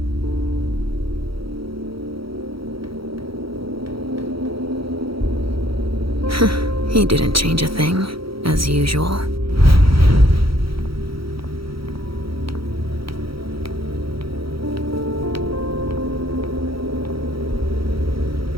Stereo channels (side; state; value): left; late; 0.75 ms